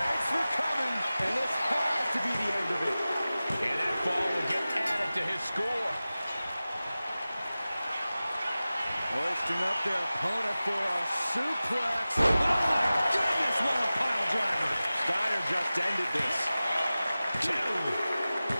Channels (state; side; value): inverted; both; correlation -0.96